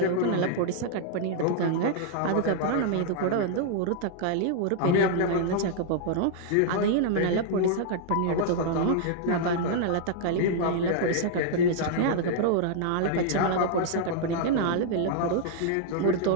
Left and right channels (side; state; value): both; different; correlation -0.01